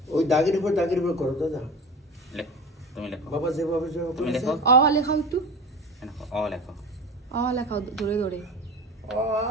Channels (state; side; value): normal; both; correlation 0.32